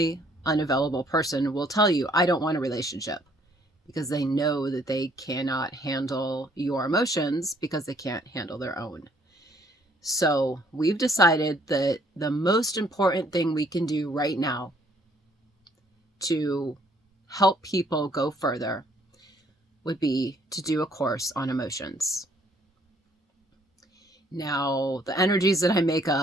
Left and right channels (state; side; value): normal; both; correlation 0.64